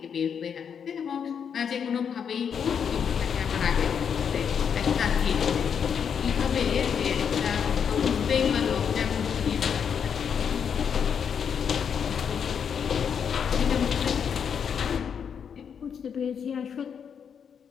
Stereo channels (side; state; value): right; quieter; 7.3 dB